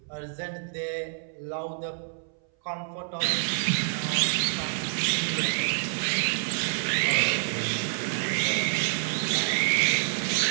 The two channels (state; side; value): silent; left; 58 dB below the other